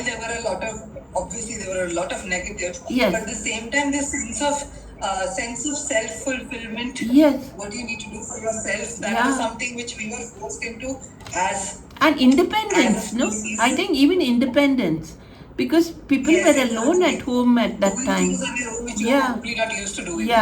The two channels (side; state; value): both; identical; correlation 1.00